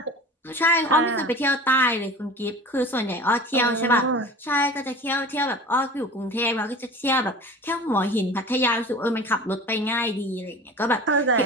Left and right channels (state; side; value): normal; both; correlation 0.38